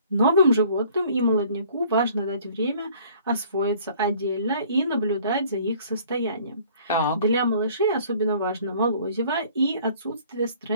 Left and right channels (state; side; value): inverted; both; correlation -0.54